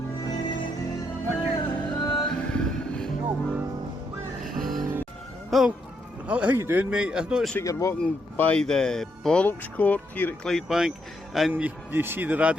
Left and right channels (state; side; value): normal; both; correlation 0.77